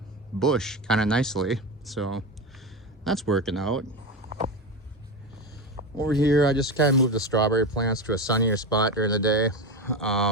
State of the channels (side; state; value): both; normal; correlation 0.19